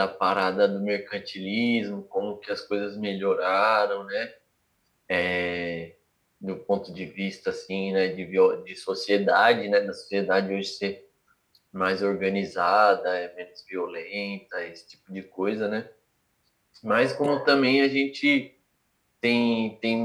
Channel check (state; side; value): identical; both; correlation 1.00